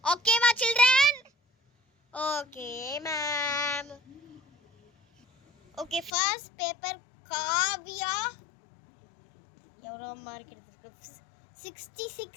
ஓகேவா children? Okay ma'am. Okay, first paper Kavya. எவ்வளோ மார்க் எடுத்துருக்கு?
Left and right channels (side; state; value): right; drops out; at 6.1 s